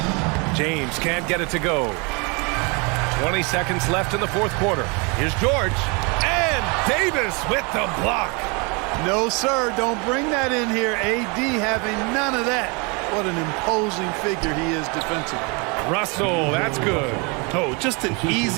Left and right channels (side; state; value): left; quieter; 31.0 dB